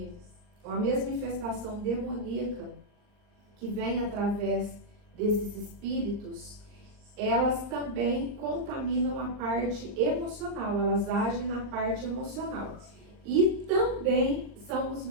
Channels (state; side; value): late; left; 39 ms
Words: a mesma infestação demoníaca que vem através desses espíritos, elas também contaminam a parte emocional, elas agem na parte emocional. E também são os